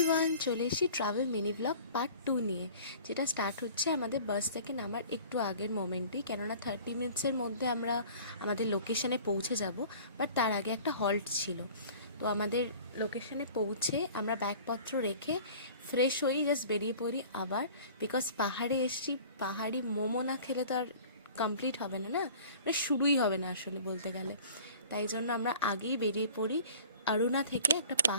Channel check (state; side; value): inverted; both; correlation -0.46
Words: চলে এসেছি travel mini blog part 2 নিয়ে, যেটা স্টার্ট হচ্ছে আমাদের বাস থেকে নামার একটু আগের মোমেন্টেই। কেননা 30 মিনিটসের মধ্যে আমরা আমাদের লোকেশানে পৌঁছে যাব, বাট তার আগে একটা হল্ট ছিল। তো আমাদের লোকেশানে পৌঁছে আমরা ব্যাগপত্র রেখে ফ্রেশ হই, জাস্ট বেরিয়ে পড়ি আবার। বিকজ পাহাড়ে এসেছি, পাহাড়ি মোমো না খেলে তো আর কমপ্লিট হবে না, মানে শুরুই হবে না আসলে বলতে গেলে। তাই জন্য আমরা আগেই বেরিয়ে পড়ি অরুণা থেকে একটা